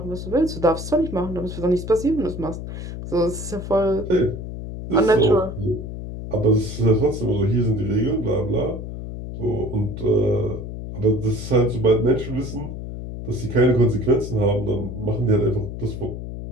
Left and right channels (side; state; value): left; noise; hum, 8 dB below the sound